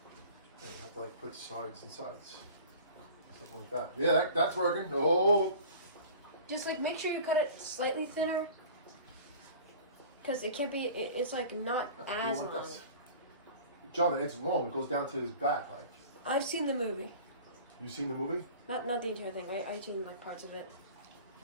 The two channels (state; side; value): inverted; both; correlation -0.42